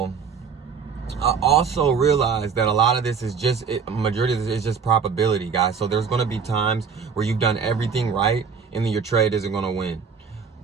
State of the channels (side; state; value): left; quieter; 6.1 dB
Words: I also realized that a lot of this is majority of this is just probability, guys. So there's going to be times where you've done everything right and then your trade isn't going to win.